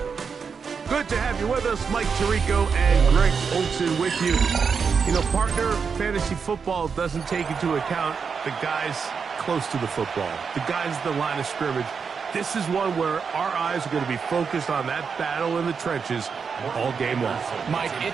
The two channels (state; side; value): quieter; left; 5.9 dB